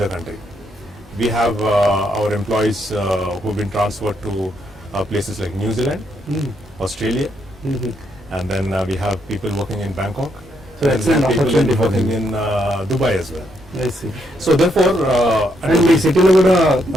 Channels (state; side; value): normal; both; correlation 0.76